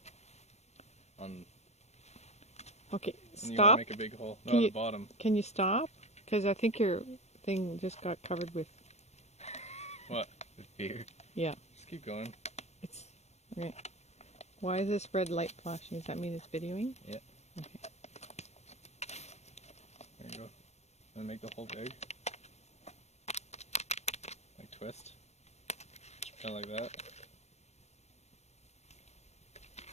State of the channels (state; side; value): late; right; 0.32 ms